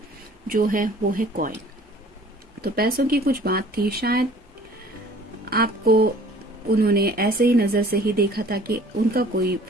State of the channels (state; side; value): normal; both; correlation 0.51